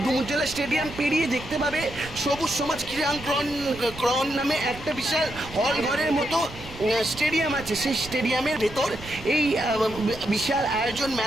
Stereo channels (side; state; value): right; noise; rumble, 15 dB below the sound